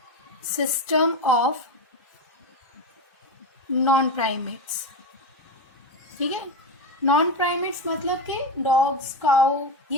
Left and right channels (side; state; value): both; normal; correlation 0.16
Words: system of non primates, ठीक है। नॉन प्राइमेट्स मतलब कि डॉग्स, काउ,